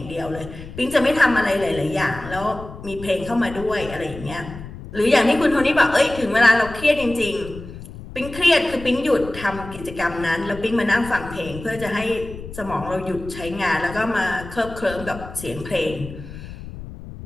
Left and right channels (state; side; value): noise; left; rumble, 13 dB below the sound